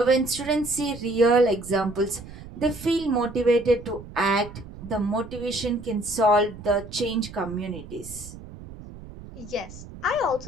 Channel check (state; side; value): noise; right; rumble, 15 dB below the sound